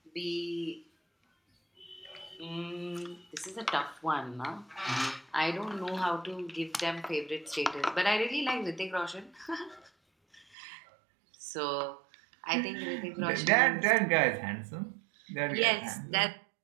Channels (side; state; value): left; drops out; at 10.5 s